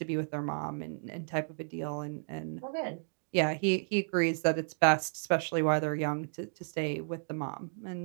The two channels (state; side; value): silent; left; digital silence